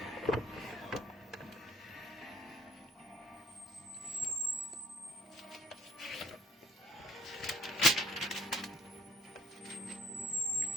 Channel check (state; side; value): normal; both; correlation 0.60